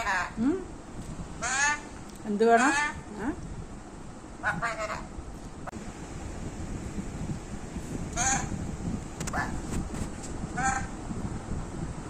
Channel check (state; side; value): identical; both; correlation 1.00